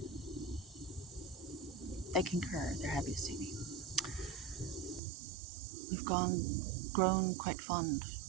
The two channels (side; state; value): left; drops out; at 5.0 s